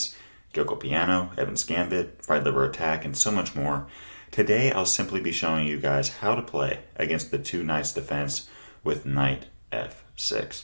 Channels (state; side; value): inverted; both; correlation -1.00